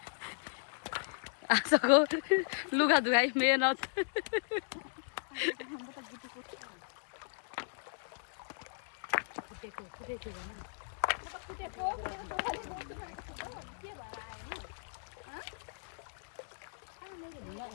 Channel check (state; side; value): silent; right; digital silence